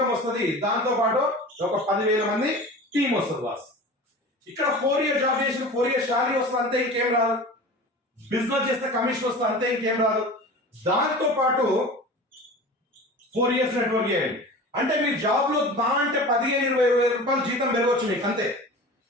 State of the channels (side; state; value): both; normal; correlation 0.36